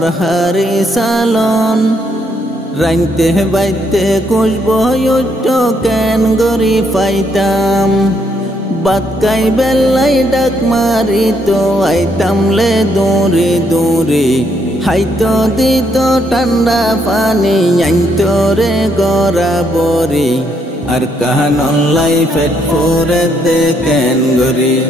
সালন রাইতে বাইতে কুসব কেন গরি পাইতাম বাত কাই বেলাই ডাক মারি তো আইতাম লে দূরে দূরে হাইতো দিত ঠান্ডা পানি আইতো রে গড়া বরি আর কাহান অনলাই পেট ফুরে দেখেন গরি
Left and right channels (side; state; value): both; normal; correlation 0.73